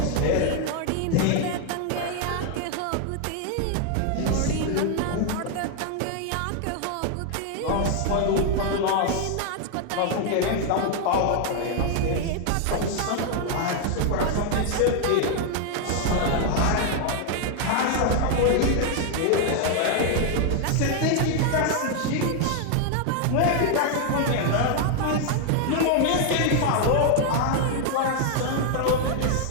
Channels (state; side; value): different; both; correlation 0.00